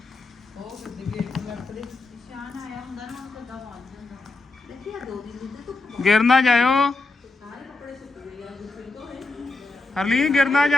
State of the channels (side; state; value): right; quieter; 3.3 dB